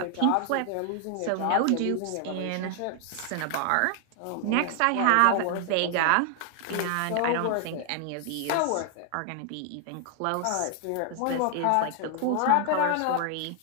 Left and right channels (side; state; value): both; different; correlation 0.00